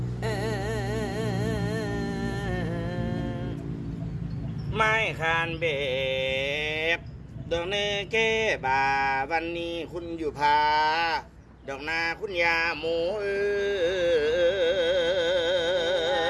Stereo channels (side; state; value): both; identical; correlation 1.00